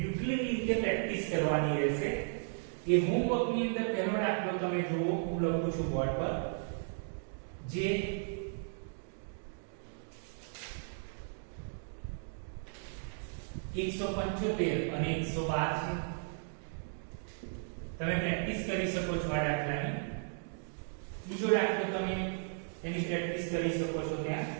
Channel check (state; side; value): silent; left; digital silence